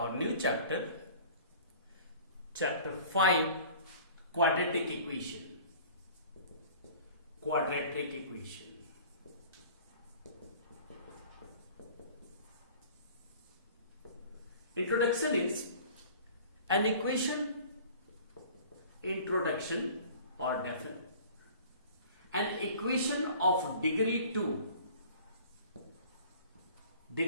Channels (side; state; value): both; inverted; correlation -0.46